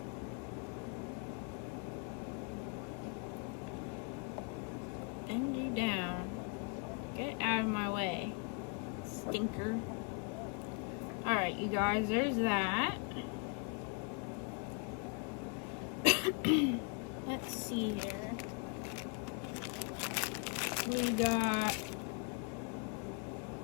Bend you down. Get out of my way, stinker. Alright, you guys, there's that. Let's see here. We got...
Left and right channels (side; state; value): right; quieter; 34.4 dB